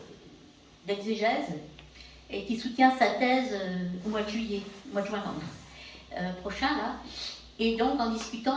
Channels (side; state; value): both; identical; correlation 1.00